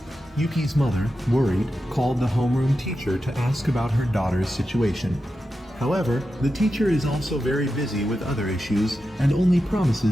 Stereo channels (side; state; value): both; normal; correlation 0.90